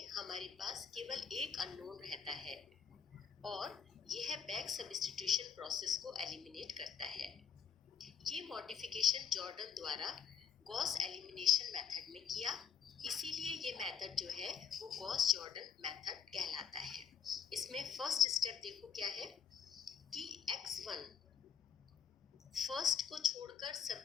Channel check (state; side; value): quieter; right; 7.5 dB